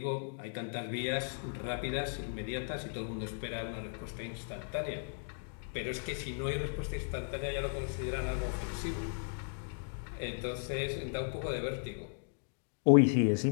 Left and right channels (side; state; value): right; silent; digital silence